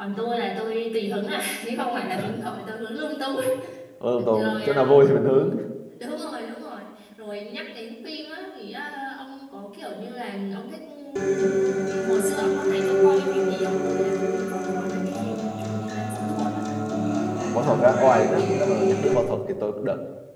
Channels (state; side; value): identical; both; correlation 1.00